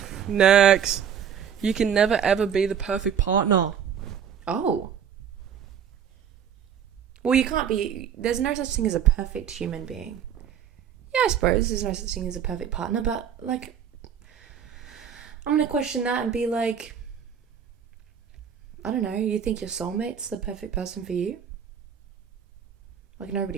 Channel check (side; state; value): left; quieter; 8.3 dB